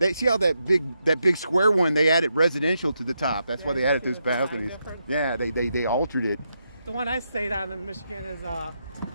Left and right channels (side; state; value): both; inverted; correlation -0.83